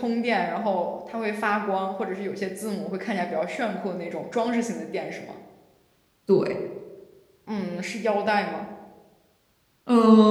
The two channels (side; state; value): both; identical; correlation 1.00